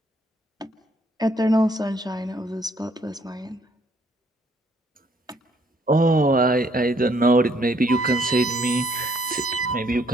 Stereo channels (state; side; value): normal; both; correlation 0.66